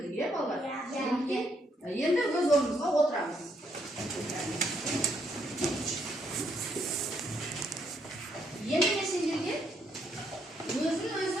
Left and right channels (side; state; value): both; normal; correlation 0.74